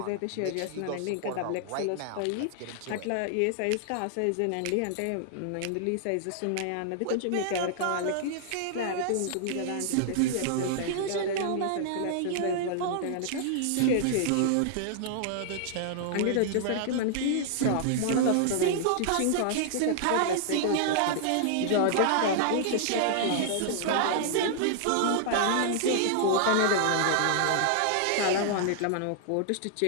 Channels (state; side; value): different; both; correlation -0.01